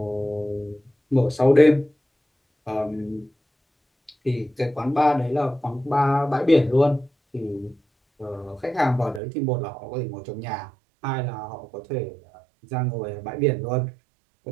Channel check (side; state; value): left; drops out; at 9.2 s